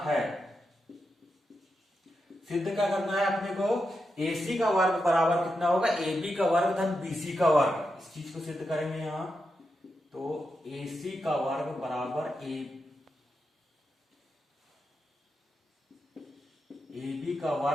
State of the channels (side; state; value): both; normal; correlation 0.87